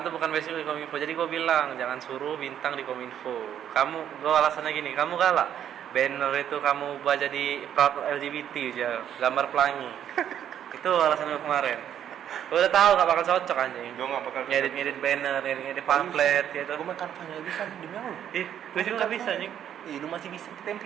tuh bukan basic di Kominfo, jadi gue bilang jangan suruh bintang di Kominfo. Gue alasannya gini, kamu galak banner itu kamu ubah jadi proud LGBT aja, gambar pelangi. Itu alasan gue kemarin. Gue udah tahu gak bakal cocok anjing. Gue nggak bakal Ngedit banner, ngedit pamflet gitu. Gue makan nggak bisa demi Allah. Ih, gue juga gak bisa anjing. Ih, lu masih bisa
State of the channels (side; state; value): left; quieter; 9.9 dB